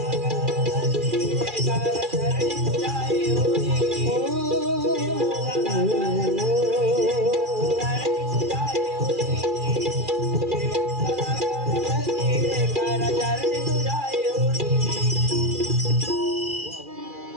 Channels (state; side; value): late; left; 2.4 ms